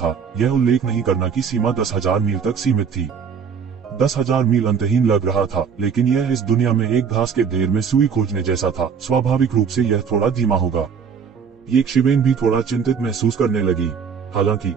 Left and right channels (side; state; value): left; quieter; 6.6 dB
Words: यह उल्लेख नहीं करना कि सीमा 10,000 मील तक सीमित थी। 10,000 मील अंतहीन लग रहा था, लेकिन यह इस दुनिया में एक घास के ढेर में सुई खोजने जैसा था। स्वाभाविक रूप से यह थोड़ा धीमा होगा। ये शिवेन भी थोड़ा चिंतित महसूस करने लगी। हालांकि